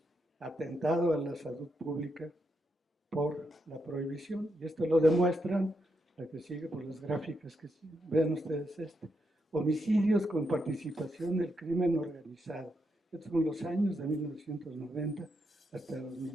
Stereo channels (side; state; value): both; normal; correlation 0.82